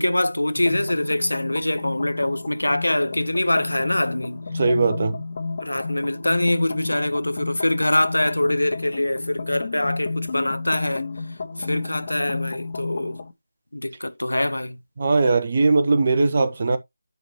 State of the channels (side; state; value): both; inverted; correlation -0.95